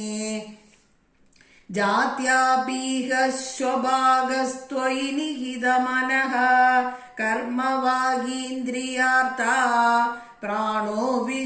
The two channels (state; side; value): identical; both; correlation 1.00